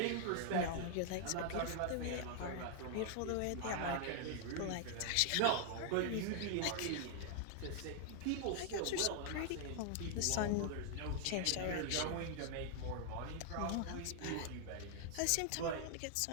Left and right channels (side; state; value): both; different; correlation 0.00